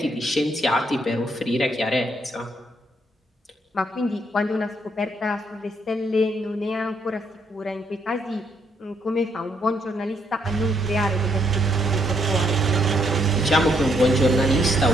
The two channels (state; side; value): normal; both; correlation 0.73